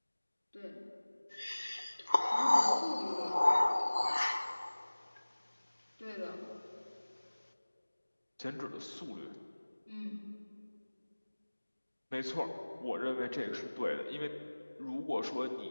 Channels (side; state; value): both; inverted; correlation -1.00